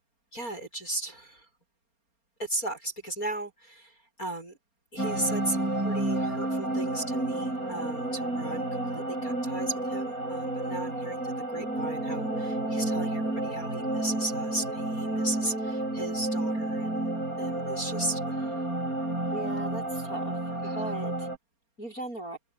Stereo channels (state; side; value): late; right; 4.3 ms